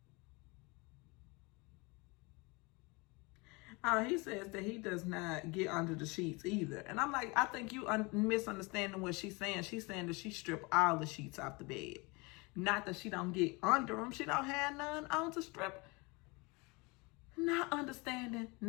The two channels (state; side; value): quieter; right; 27.0 dB